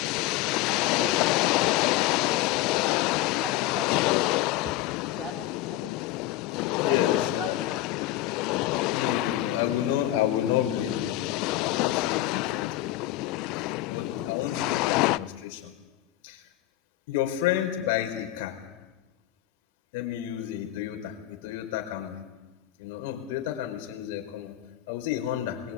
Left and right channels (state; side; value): quieter; right; 14.8 dB